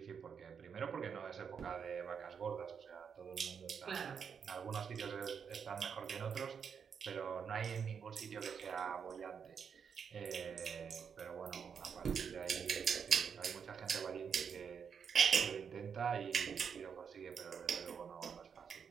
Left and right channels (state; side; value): quieter; left; 6.8 dB